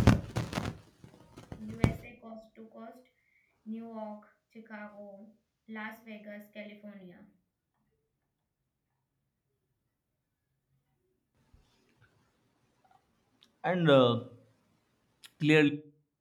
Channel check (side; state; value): both; identical; correlation 1.00